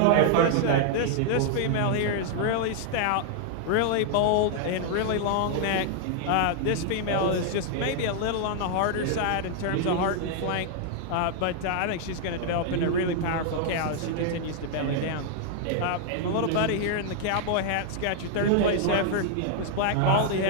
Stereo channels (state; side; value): different; both; correlation 0.00